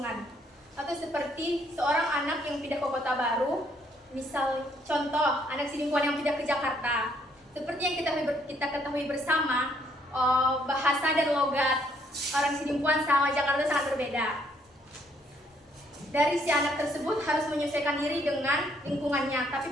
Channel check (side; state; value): both; normal; correlation 0.68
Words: Atau seperti seorang anak yang pindah ke kota baru, misal contoh anak Sidimpuan yang pindah ke Jakarta. Seperti yang kita ketahui bersama, bahasa dan logat orang Sidimpuan sama Jakarta sangat berbeda. Dari si anak tersebut harus menyesuaikan diri dengan lingkungannya, tapi